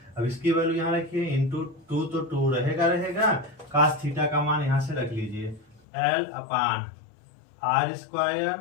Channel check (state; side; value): drops out; right; at 5.8 s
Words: अब इसकी वैल्यू यहाँ रखिए इंटू 2 तो 2 रहेगा cos थीटा का मान यहाँ से रख लीजिए l अपान r²